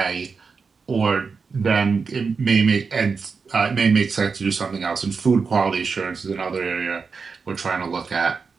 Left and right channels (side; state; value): left; quieter; 5.1 dB